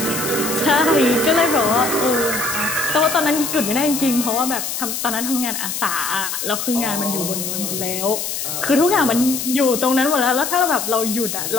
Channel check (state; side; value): noise; left; hiss, 4 dB below the sound